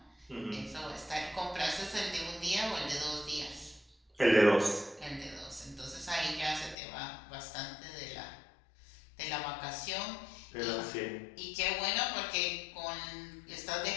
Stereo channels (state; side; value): drops out; right; at 6.8 s